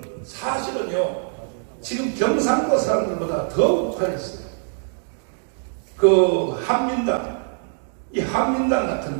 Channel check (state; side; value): silent; left; digital silence